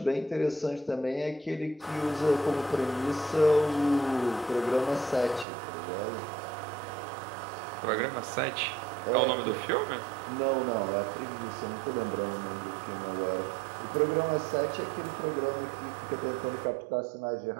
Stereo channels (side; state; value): left; drops out; at 5.5 s